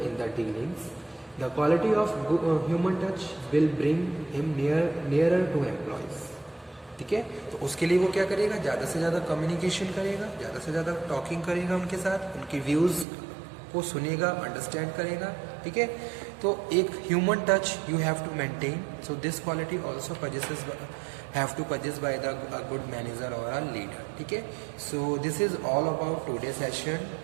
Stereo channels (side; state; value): left; drops out; at 13.1 s